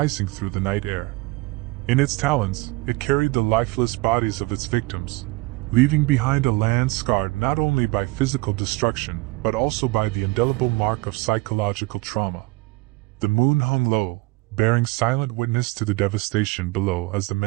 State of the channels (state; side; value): quieter; left; 23.1 dB